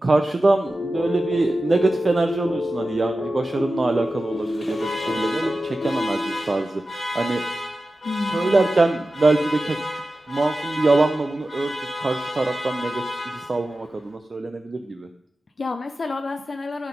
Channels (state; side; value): normal; both; correlation 0.94